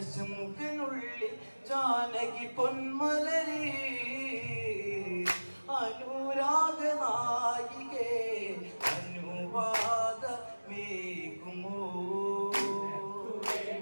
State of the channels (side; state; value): both; inverted; correlation -1.00